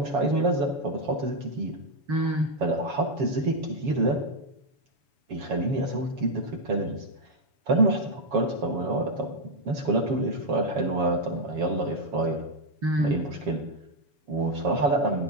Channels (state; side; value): late; left; 7.2 ms